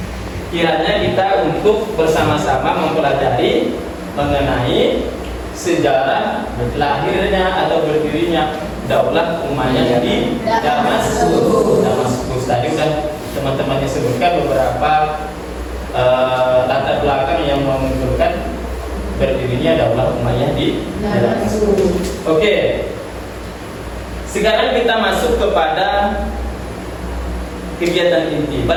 kiranya kita untuk bersama-sama mempelajari mengenai sejarah lahirnya atau berdirinya Daulah Umayyah di Damaskus. Tadi sudah teman-temannya sebutkan beberapa latar belakang yang menunjukkan berdirinya Daulah Umayyah di Damaskus. Oke. Sekarang kita masuk kepada kegiatan inti.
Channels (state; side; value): identical; both; correlation 1.00